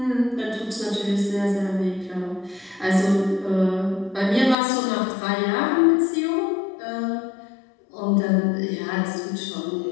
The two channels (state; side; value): drops out; right; at 4.5 s